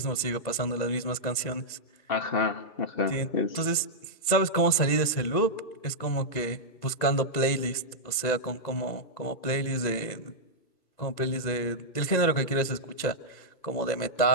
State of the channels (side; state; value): right; late; 2.0 ms